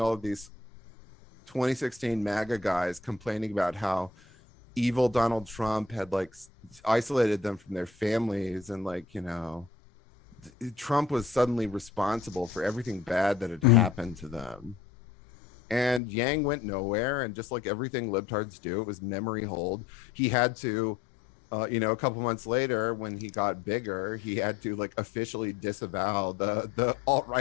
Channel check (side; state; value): right; drops out; at 16.0 s